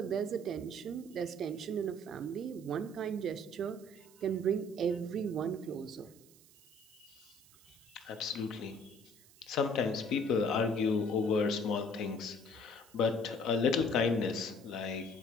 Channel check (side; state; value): right; noise; hiss, 25 dB below the sound